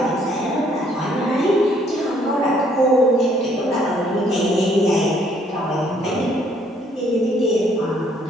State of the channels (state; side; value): normal; both; correlation 0.65